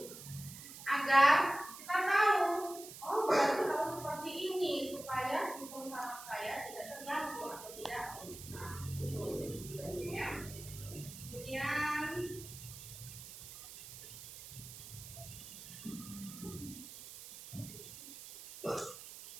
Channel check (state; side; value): noise; right; hiss, 13 dB below the sound